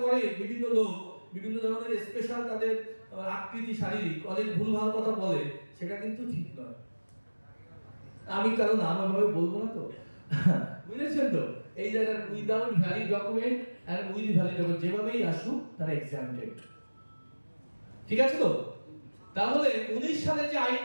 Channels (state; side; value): inverted; both; correlation -1.00